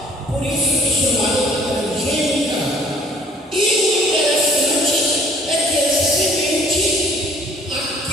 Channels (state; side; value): normal; both; correlation 0.57